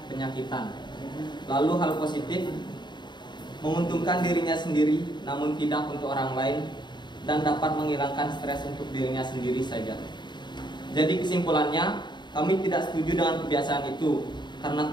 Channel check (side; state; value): right; late; 0.22 ms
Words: penyakitan. Lalu hal positif, menguntungkan dirinya sendiri namun tidak untuk orang lain, dan dapat menghilangkan stres untuk dirinya sendiri saja. Jadi kesimpulannya, kami tidak setuju dengan kebiasaan itu, karena